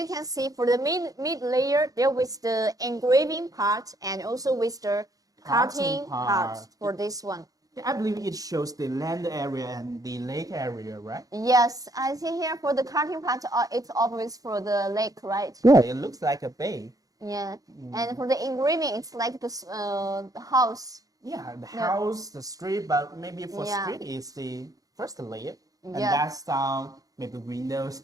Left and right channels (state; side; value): late; left; 0.17 ms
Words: can see, for the mid layer, there was the engraving part and also with the cutting part for this one. I believe it shows the land area and the lake area, right? Yes, I see here for the cutting part, it's always for the lake, right? Yeah, it looks like a bay. Yeah, and for the engraving, it's like the house. Yeah, the house, the street, but maybe for Yeah. street is the first layer. And Yeah. that's maybe windows,